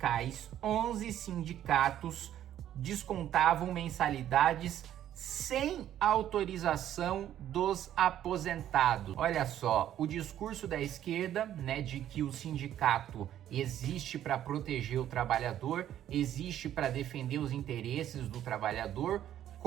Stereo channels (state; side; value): quieter; left; 11.4 dB